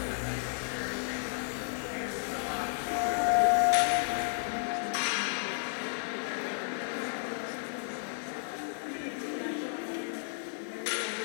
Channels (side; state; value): right; silent; 56 dB below the other